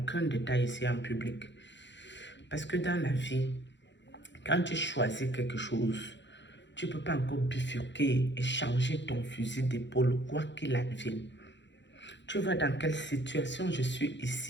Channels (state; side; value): late; right; 0.52 ms